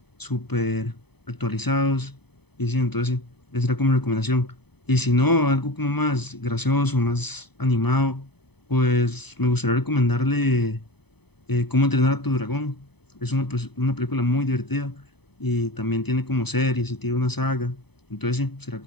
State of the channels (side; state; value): right; late; 0.98 ms